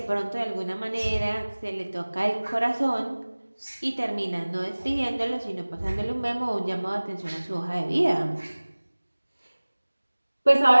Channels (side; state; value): both; inverted; correlation -1.00